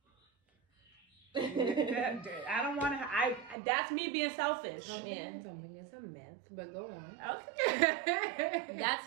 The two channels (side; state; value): left; drops out; at 3.6 s